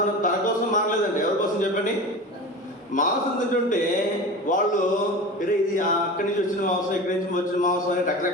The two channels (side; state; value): both; normal; correlation 0.31